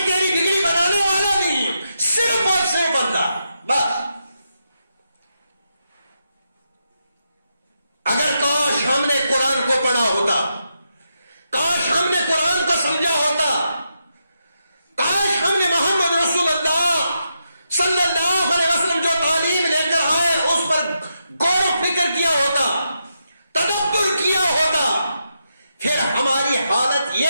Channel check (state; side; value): inverted; both; correlation -0.84